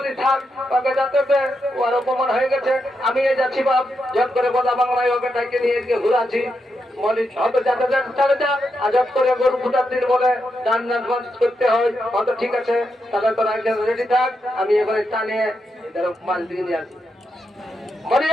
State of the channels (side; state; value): both; normal; correlation 0.84